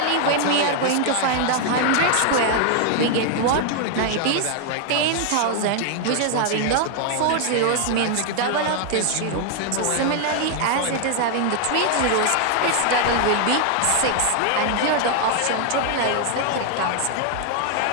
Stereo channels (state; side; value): different; both; correlation 0.00